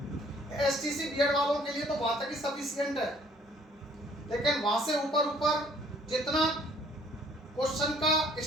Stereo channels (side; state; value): both; normal; correlation 0.59